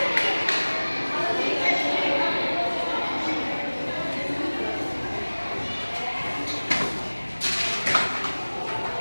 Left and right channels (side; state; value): both; inverted; correlation -1.00